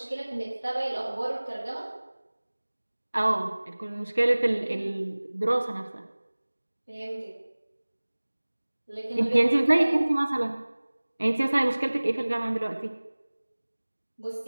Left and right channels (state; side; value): inverted; both; correlation -1.00